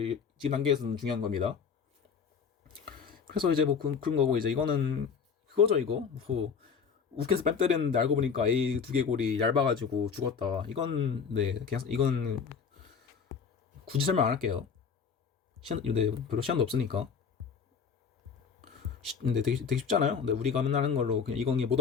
지금 단계에서는 중요한 겁니다. 그래서 이제 뭐 그런 거고 이제 이거는 그거죠 이거 뭐 욱해서 뺨 때렸는데 알고 보니까 A 두개골이 얇아가지고 죽었다. 이건 네 그냥 이건 굳이 설명 안 할게요. 네, 별로 시간도 없으니까. 근데 되게 쉽잖아요. 근데 우리가 맨날 하는 걸로 그냥 이건희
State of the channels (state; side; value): quieter; right; 6.2 dB